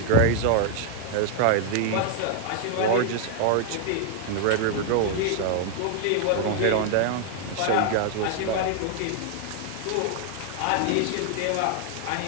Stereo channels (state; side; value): different; both; correlation 0.00